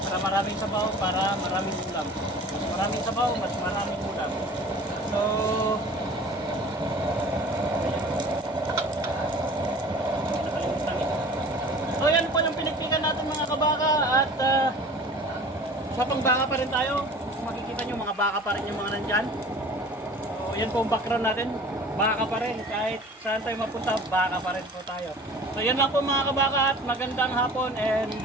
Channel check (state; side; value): normal; both; correlation 0.44